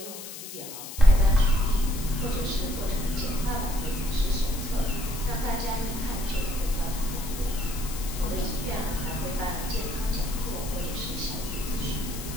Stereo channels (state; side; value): noise; left; hiss, 11 dB below the sound